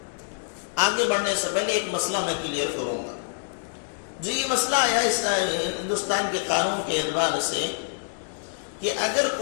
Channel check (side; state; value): right; silent; 61 dB below the other